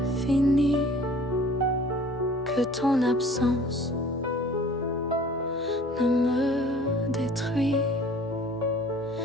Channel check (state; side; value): normal; both; correlation 0.49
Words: fini, que ton absence ne me détruit.